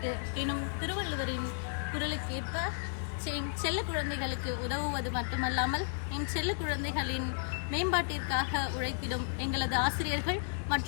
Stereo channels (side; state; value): right; silent; digital silence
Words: எனும் திருவள்ளுவரின் குரலுக்கு ஏற்ப செல்ல குழந்தைகளுக்கு உதவுவது மட்டுமல்லாமல் என் செல்ல குழந்தைகளின் மேம்பாட்டிற்காக உழைத்திடும் எங்களது ஆசிரியர்கள்